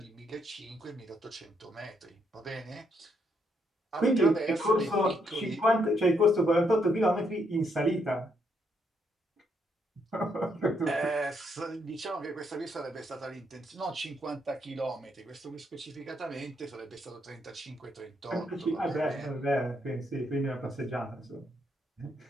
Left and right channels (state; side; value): normal; both; correlation 0.75